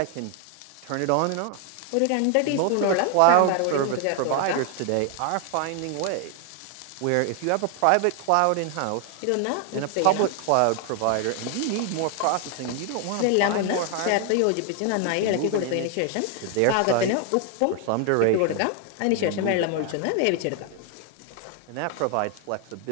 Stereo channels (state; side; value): different; both; correlation 0.00